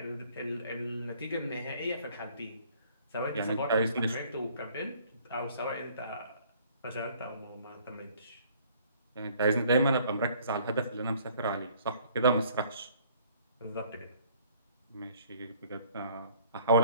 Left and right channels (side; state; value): both; inverted; correlation -0.57